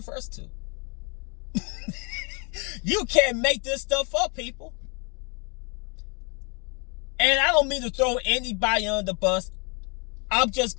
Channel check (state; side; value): quieter; right; 33.6 dB